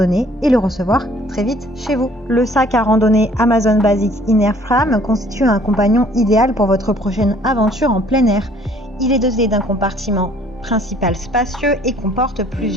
et le recevoir très vite chez vous. Le sac à randonnée Amazon Basics Inner Frame constitue un compagnon idéal pour votre prochaine aventure en plein air. Il est doté d'un compartiment principal spacieux et comporte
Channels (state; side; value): normal; both; correlation 0.58